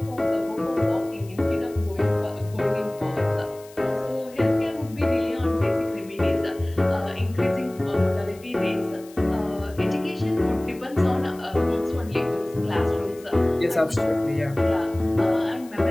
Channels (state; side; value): noise; left; hiss, 23 dB below the sound